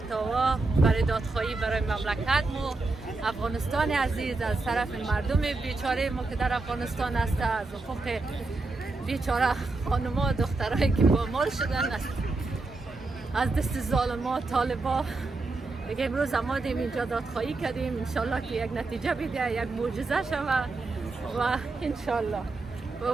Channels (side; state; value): left; quieter; 3.5 dB